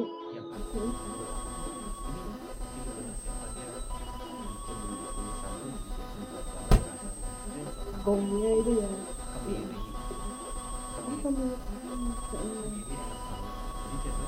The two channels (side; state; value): both; identical; correlation 1.00